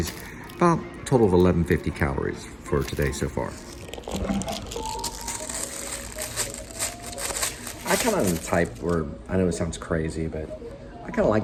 About a total of 1150 calories for today so far. I kind of am the type where, I know it sounds crazy, but I kind of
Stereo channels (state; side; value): identical; both; correlation 1.00